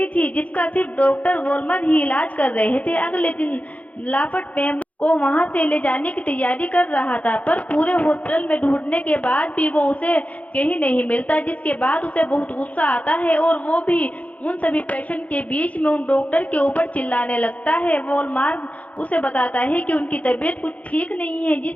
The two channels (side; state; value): right; late; 0.069 ms